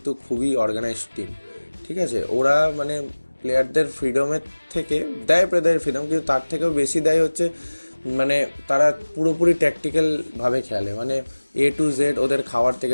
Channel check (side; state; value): both; inverted; correlation -1.00